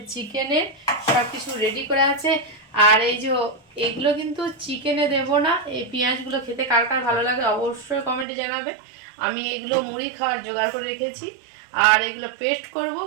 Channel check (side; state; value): left; drops out; at 8.2 s